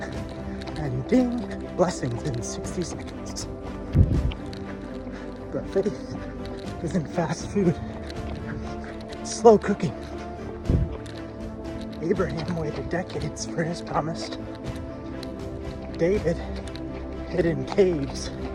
and ding, blessings in 60 seconds. But faith isn't fast food. It's slow cooking. Abraham waited decades for his promise. David hid in caves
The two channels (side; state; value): both; identical; correlation 1.00